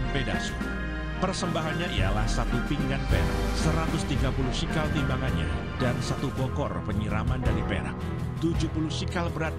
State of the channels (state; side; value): identical; both; correlation 1.00